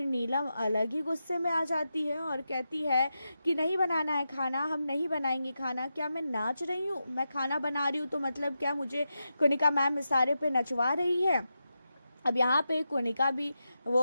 नीलम अलग ही गुस्से में आ जाती है और कहती है कि नहीं बनाना है खाना, हम नहीं बनाएंगे खाना। क्या मैं नाच रही हूँ? मैं खाना बना रही हूँ तो मतलब क्या मुझे कोनिका मैम इशारे पे नचवा रही है? अब यहाँ पे कोनिका भी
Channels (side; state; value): both; inverted; correlation -0.89